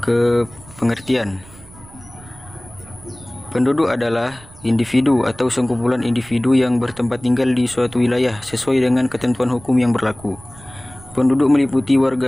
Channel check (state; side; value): noise; right; rumble, 21 dB below the sound